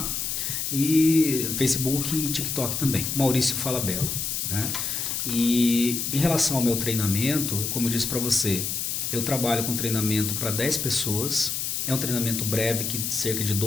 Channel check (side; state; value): left; noise; hiss, 2 dB below the sound